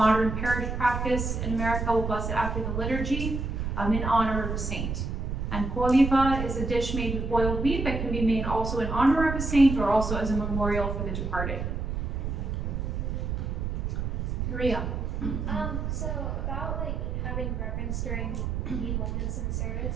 parish practice in America, we'll bless it after the liturgy in honor of a saint. And coliva is a dish made with boiled wheat that can be made also in honor of a saint or also as a memorial for the departed. Maria. So about like having reverence during the moments in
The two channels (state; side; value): noise; right; rumble, 2 dB below the sound